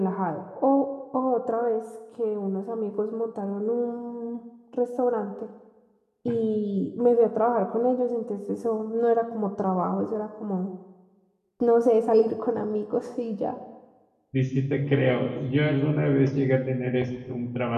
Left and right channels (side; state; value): both; identical; correlation 1.00